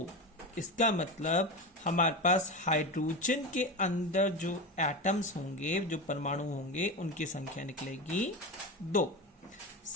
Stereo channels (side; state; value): both; normal; correlation 0.22